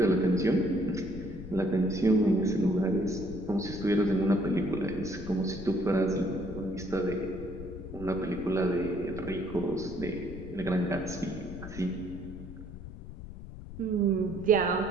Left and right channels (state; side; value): noise; left; rumble, 12 dB below the sound